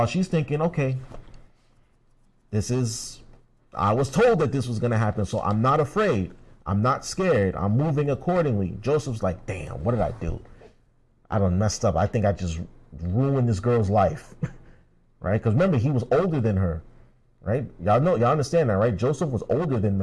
she's thinking, okay, I was told that this was going to happen, so I'm not afraid. I'm not scared. I'm moving accordingly. Joseph's like, damn, what did I do? I done messed up. I think I just ruined this girl's life, right? Because remember, he was older than her, right? Y'all understand that, right? Joseph was older than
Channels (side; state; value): both; identical; correlation 1.00